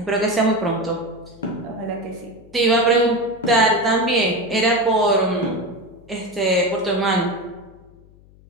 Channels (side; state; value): left; noise; hum, 26 dB below the sound